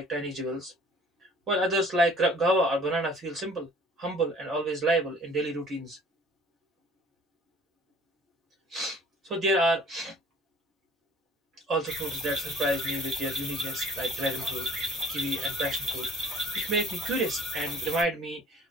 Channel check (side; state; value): both; normal; correlation 0.50